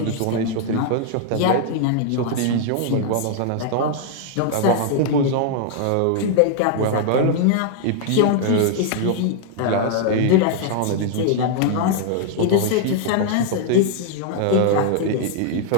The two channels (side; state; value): both; different; correlation 0.00